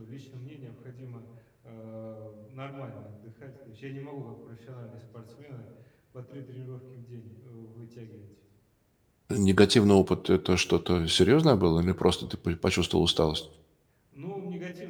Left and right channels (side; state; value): both; identical; correlation 1.00